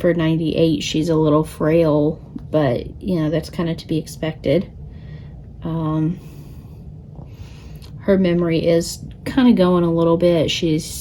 98, she's a little frail, but, you know, that's kind of to be expected. Her memory is kind of going a little bit. She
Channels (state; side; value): identical; both; correlation 1.00